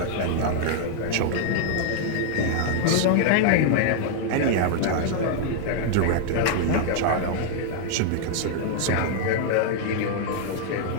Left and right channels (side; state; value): both; different; correlation 0.00